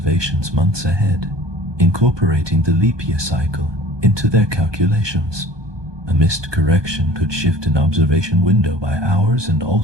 months ahead, incorporating the leap year cycle into their calculations. A missed correction could shift an observation window by hours and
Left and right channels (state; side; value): late; left; 1.2 ms